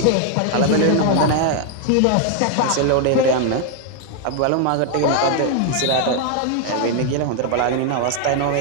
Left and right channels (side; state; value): both; different; correlation 0.00